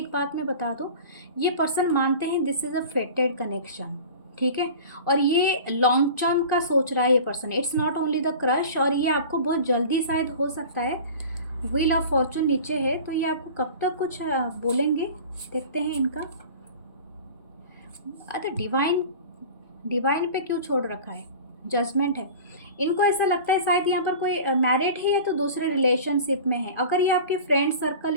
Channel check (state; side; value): inverted; both; correlation -0.38